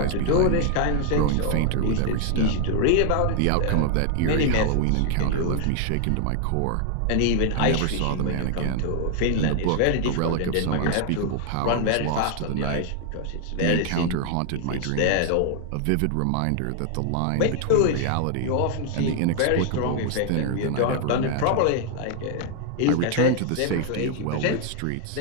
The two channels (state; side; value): different; both; correlation 0.00